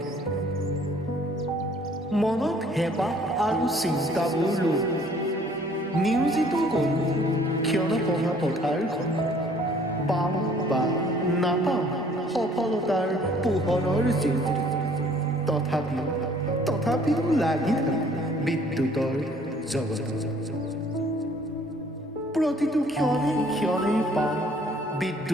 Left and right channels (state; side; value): normal; both; correlation 0.58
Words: মনত হেঁপাহ আৰু চিন্তাবোৰ লৈ নিয়োজিত কৰোঁ ক্ষণপহা পথাৰখন। পাওঁ বা নাপাওঁ সফলতাৰ পোহৰৰ জিলিকি, তথাপিও লাগি থাকে বিদ্যুতৰ জগত। প্ৰতিটো ক্ষণে ক্ষণে পাওঁ